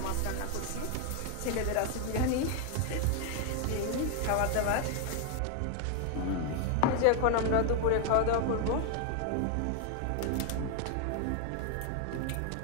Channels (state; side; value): different; both; correlation 0.00